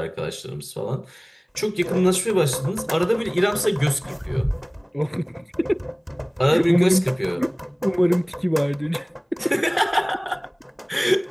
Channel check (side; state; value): both; identical; correlation 1.00